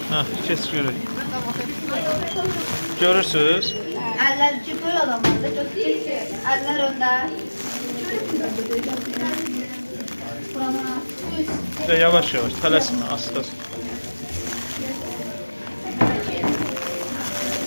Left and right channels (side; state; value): both; inverted; correlation -1.00